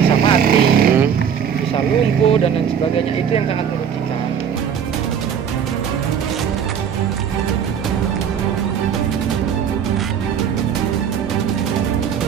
bisa mati, bisa lumpuh dan lain sebagainya. Itu yang sangat merugikan.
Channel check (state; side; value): quieter; left; 7.9 dB